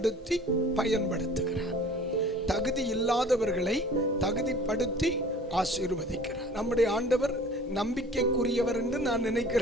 பயன்படுத்துகிறார். தகுதி இல்லாதவர்களை தகுதிப்படுத்தி ஆசீர்வதிக்கிறார். நம்முடைய ஆண்டவர் நம்பிக்கைக்குரியவர் என்று நான்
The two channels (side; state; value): both; normal; correlation 0.46